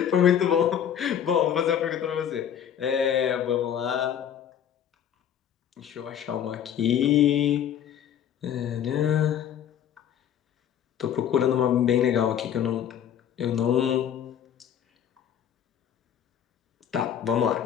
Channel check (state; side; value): quieter; right; 9.5 dB